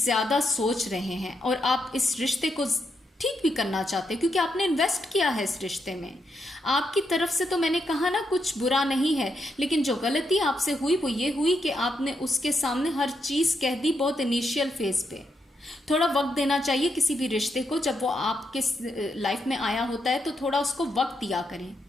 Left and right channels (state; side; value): normal; both; correlation 0.81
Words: सोच रहे हैं और आप इस रिश्ते को ठीक भी करना चाहते हैं, क्योंकि आपने इन्वेस्ट किया है इस रिश्ते में। आपकी तरफ से तो मैंने कहा ना, कुछ बुरा नहीं है, लेकिन जो गलती आपसे हुई वो ये हुई कि आपने उसके सामने हर चीज़ कह दी बहुत इनिशियल फेज पे। थोड़ा वक्त देना चाहिए किसी भी रिश्ते को। जब वो आपके लाइफ में आया होता है तो थोड़ा उसको वक्त दिया करें।